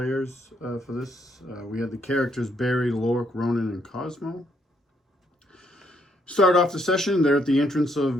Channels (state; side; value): normal; both; correlation 0.72